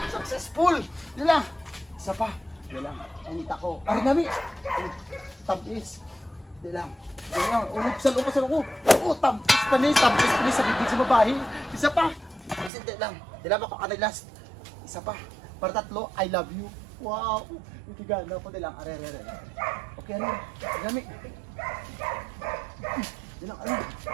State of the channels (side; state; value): left; drops out; at 12.7 s